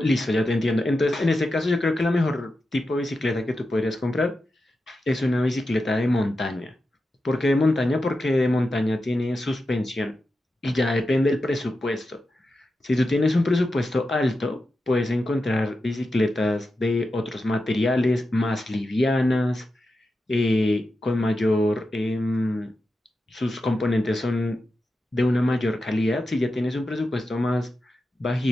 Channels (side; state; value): both; normal; correlation 0.90